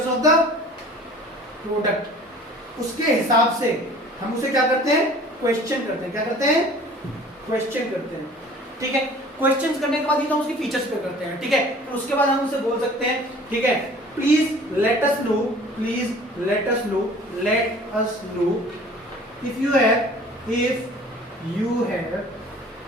ऑफ द प्रोडक्ट, उसके हिसाब से हम उसे क्या करते हैं, क्वेश्चन करते हैं। क्या करते हैं, क्वेश्चन करते हैं, ठीक है। क्वेश्चंस करने के बाद ही तो उसकी फीचर्स पे करते हैं, ठीक है। फिर उसके बाद हम उसे बोल सकते हैं, ठीक है, please let us no if you have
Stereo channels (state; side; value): normal; both; correlation 0.48